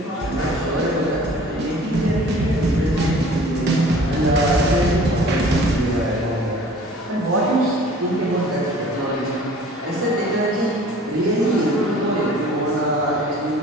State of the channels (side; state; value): both; normal; correlation 0.48